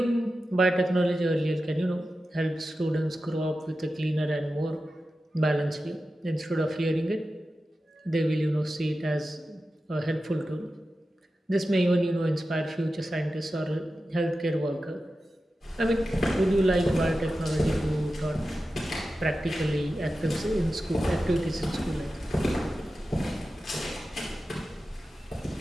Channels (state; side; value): normal; both; correlation 0.93